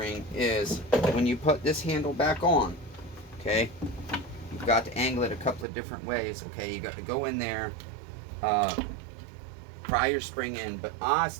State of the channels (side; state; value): left; drops out; at 5.7 s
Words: is when you put this handle back on, okay, you've got to angle it a couple of different ways. Okay, you got to go in there, pry your spring in, but I